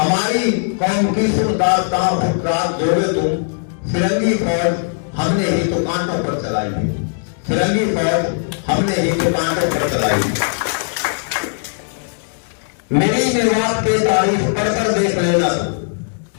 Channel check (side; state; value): right; silent; 67 dB below the other